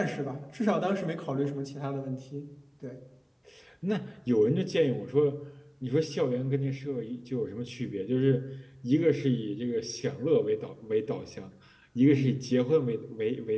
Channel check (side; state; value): both; identical; correlation 1.00